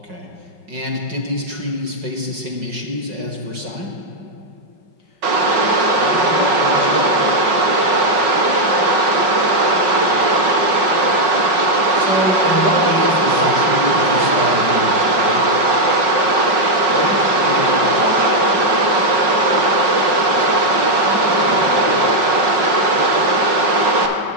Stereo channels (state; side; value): late; left; 5.5 ms